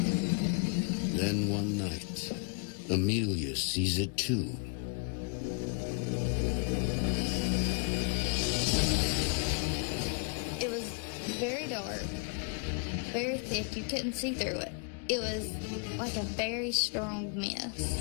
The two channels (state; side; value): quieter; right; 37.5 dB